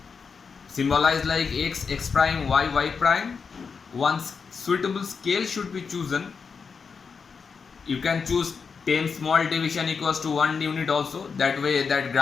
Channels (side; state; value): right; quieter; 5.6 dB